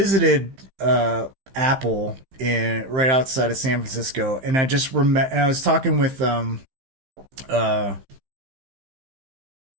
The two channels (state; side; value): late; left; 15 ms